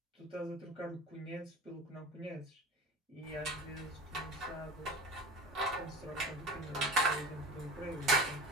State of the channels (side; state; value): both; normal; correlation 0.33